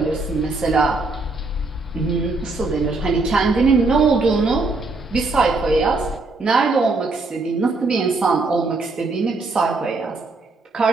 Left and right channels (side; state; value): left; quieter; 3.5 dB